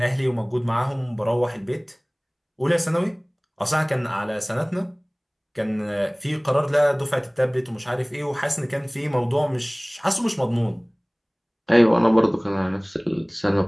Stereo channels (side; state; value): both; identical; correlation 1.00